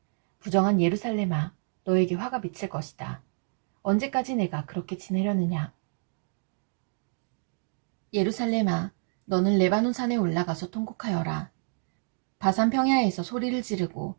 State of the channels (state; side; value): silent; left; digital silence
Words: 부정한 예루살렘아, 너에게 화가 미칠 것이다. 언제까지 내가 그렇게 지내려느냐? 예루살렘아, 너는 레바논 산에 올라가서 통곡하여라. 바산 평야에서 소리를 지르고